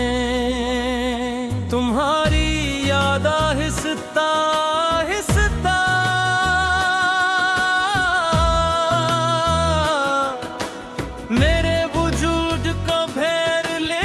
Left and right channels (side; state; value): both; identical; correlation 1.00